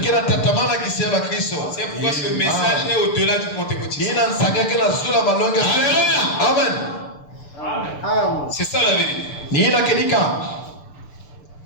C'est pourquoi ce message est au-delà du pentecôtisme. Amen. C'est ça la vérité.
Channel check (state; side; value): late; right; 6.8 ms